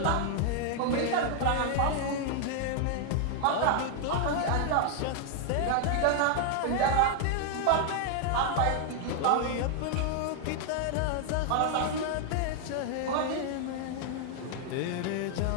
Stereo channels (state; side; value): different; both; correlation 0.00